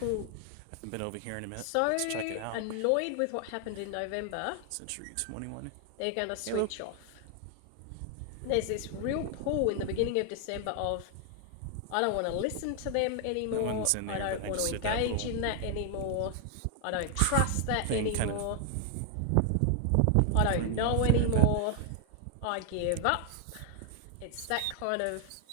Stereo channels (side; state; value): both; different; correlation 0.00